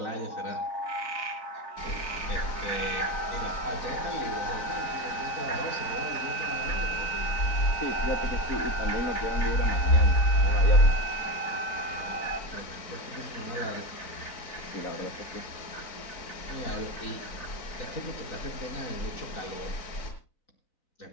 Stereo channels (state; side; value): late; right; 4.0 ms